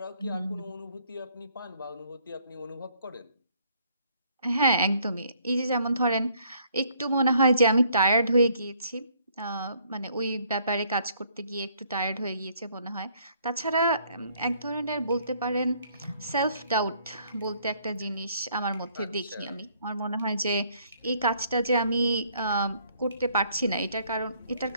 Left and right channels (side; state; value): both; inverted; correlation -0.65